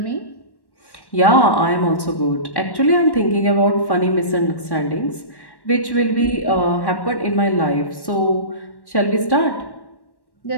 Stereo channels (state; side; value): late; right; 1.1 ms